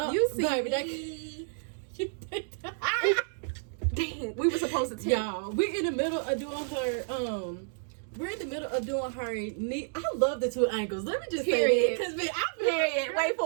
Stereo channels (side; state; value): left; silent; digital silence